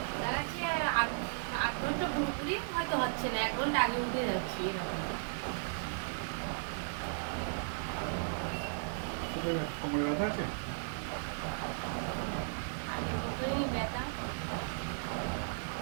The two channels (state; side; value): silent; left; digital silence